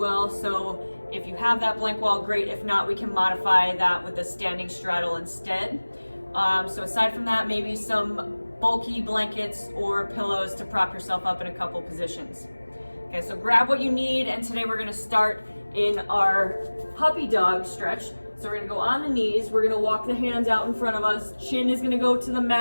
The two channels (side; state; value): both; inverted; correlation -1.00